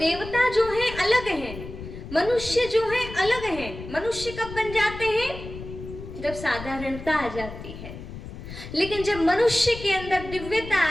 जो है अलग हैं, मनुष्य जो है अलग हैं। मनुष्य कब बन जाते हैं? जब साधारणता आ जाती है, लेकिन जब मनुष्य के अंदर दिव्यता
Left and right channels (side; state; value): left; noise; rumble, 11 dB below the sound